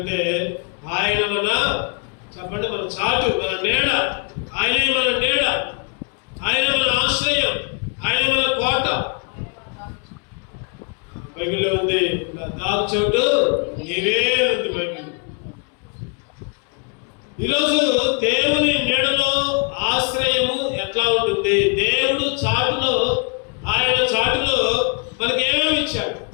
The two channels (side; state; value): right; quieter; 37.6 dB